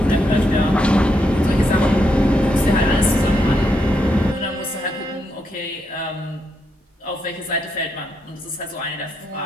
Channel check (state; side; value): normal; both; correlation 0.80